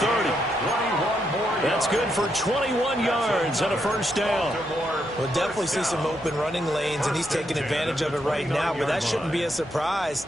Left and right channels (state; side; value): noise; left; hum, 25 dB below the sound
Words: That's good for 21 yards and a 1st down. We'll definitely see some open running lanes, and he's taking advantage of it right now, but that shouldn't be a surprise.